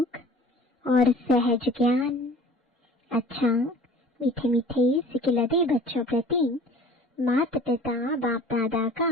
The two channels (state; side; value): normal; both; correlation 0.46